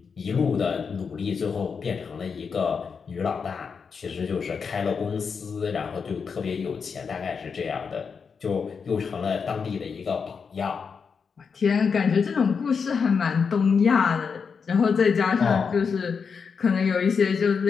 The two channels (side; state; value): right; quieter; 5.8 dB